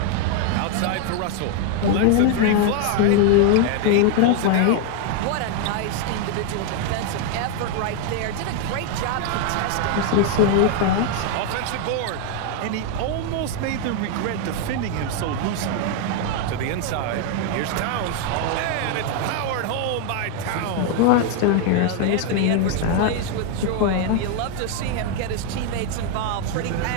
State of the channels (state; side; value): different; both; correlation 0.00